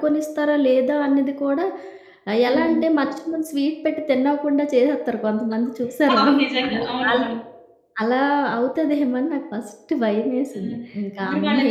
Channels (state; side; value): identical; both; correlation 1.00